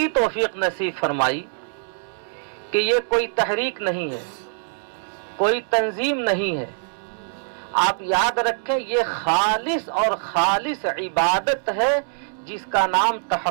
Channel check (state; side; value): silent; left; digital silence